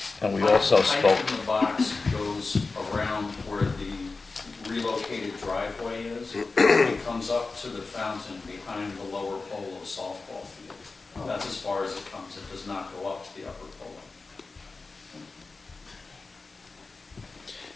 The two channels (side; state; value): right; quieter; 3.9 dB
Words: And we also Pipe spoke, in the box goes around where the relocated driveway is. It comes up to the fountain behind the lower pole of softball field. That's as far as it comes. It does not go up to the upper pole.